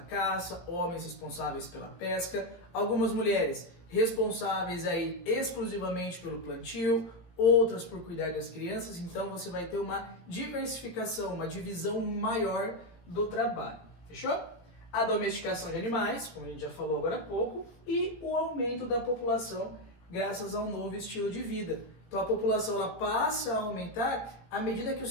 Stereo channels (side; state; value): right; late; 17 ms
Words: homens responsáveis pela pesca, algumas mulheres responsáveis aí exclusivamente pelo plantio, outras por cuidar das crianças, então você vai ter uma diversificação, uma divisão maior do trabalho, fechou? A domesticação de animais, como a gente já falou agora há pouco, e o aumento da população graças ao novo estilo de vida. Então a população ela passa a aumentar à medida que o